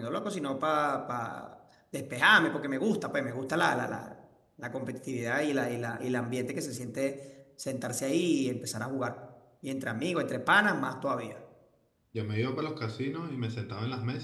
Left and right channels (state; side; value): identical; both; correlation 1.00